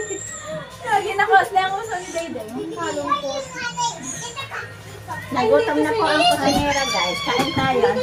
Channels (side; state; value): both; identical; correlation 1.00